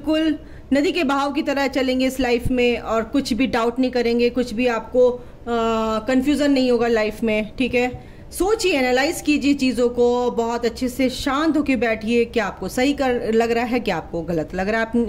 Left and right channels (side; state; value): both; identical; correlation 1.00